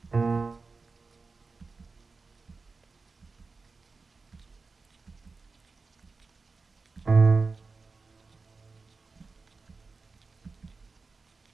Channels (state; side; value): quieter; left; 4.1 dB